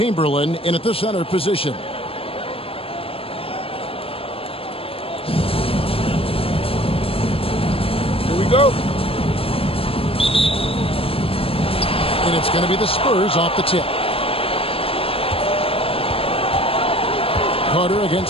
in at the center position. Go. And it's going to be the Spurs off the tip. Carter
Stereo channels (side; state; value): right; late; 0.27 ms